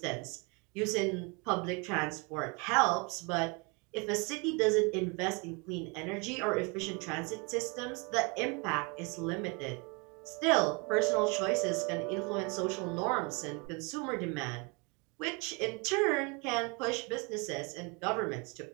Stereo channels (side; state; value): left; quieter; 30.9 dB